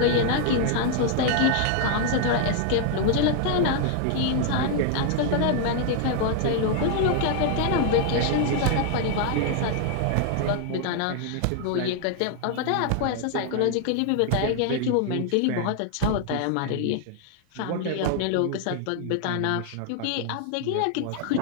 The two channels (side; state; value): both; different; correlation 0.00